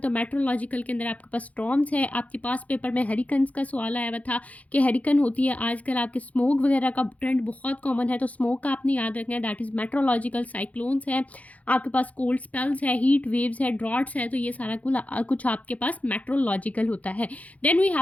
मेट्रोलॉजिकल के अंदर आपके पास स्टॉर्म्स है। आपके पास पेपर में हरिकन्स का सवाल आया हुआ था कि हरिकन होती है, आजकल आपके स्मोक वगैरह का ट्रेंड बहुत कॉमन है, तो स्मोक का आपने याद रखना है, दैट इज़ मेट्रोलॉजिकल। साइक्लोन्स है, आपके पास कोल्ड स्पेल्स है, हीट वेव्स है, ड्रॉट्स है, तो ये सारा कुछ आपके पास मेट्रोलॉजिकल होता है। Then we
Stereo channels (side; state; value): right; late; 0.069 ms